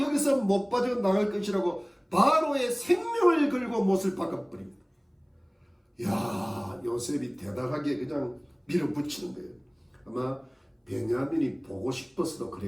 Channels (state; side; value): identical; both; correlation 1.00